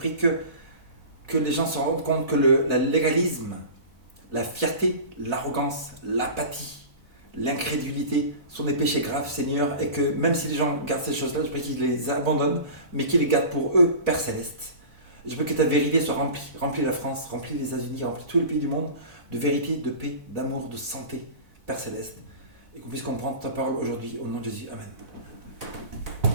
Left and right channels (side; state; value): left; late; 4.0 ms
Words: que les gens se rendent compte que le légalisme, la fierté, l'arrogance, l'apathie, l'incrédulité sont des péchés graves, Seigneur, et que même si les gens gardent ces choses-là, je prie qu'ils les abandonnent, mais qu'ils les gardent pour eux, Père Céleste. Je veux que ta vérité soit remplie la France, remplie les États-Unis, remplie tous les pays du monde de vérité, de paix, d'amour, de santé, Père Céleste. Et qu'on puisse comprendre ta parole aujourd'hui, au nom de Jésus. Amen.